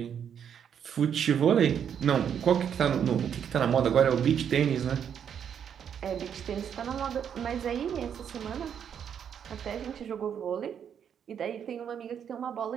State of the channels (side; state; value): left; quieter; 8.3 dB